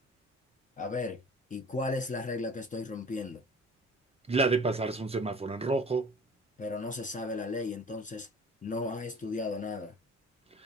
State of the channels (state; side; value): normal; both; correlation 0.46